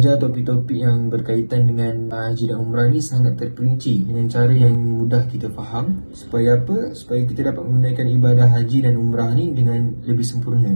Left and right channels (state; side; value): inverted; both; correlation -1.00